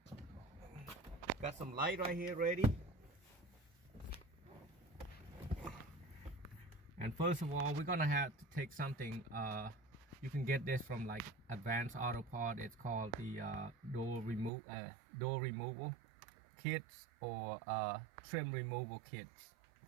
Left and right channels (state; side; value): drops out; left; at 14.5 s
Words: Got some light right here ready. And first of all, we're gonna have to take something. You can get this from like Advanced Auto Part. It's called the door removal kits or trim removal kits.